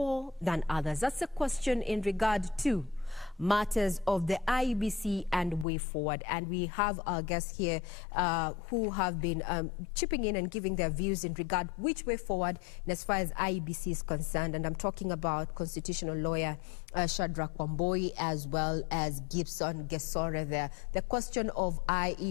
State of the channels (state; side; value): drops out; right; at 5.7 s